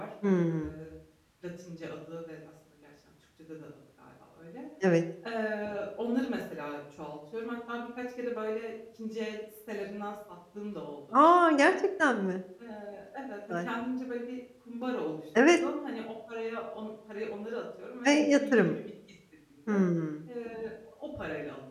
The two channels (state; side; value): identical; both; correlation 1.00